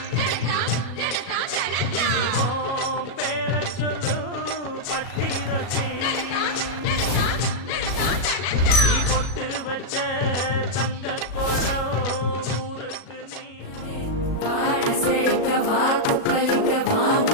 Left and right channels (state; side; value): late; right; 37 ms